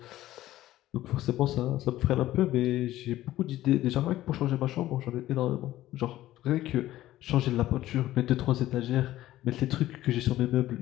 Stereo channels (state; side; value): quieter; right; 14.7 dB